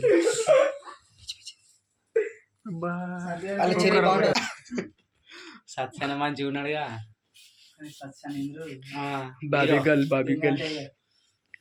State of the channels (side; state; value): both; identical; correlation 1.00